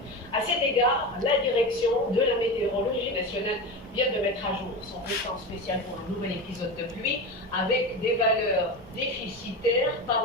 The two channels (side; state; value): both; normal; correlation 0.24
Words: À cet égard, la direction de la météorologie nationale vient de mettre à jour son bulletin spécial pour un nouvel épisode de pluie avec des valeurs déficitaires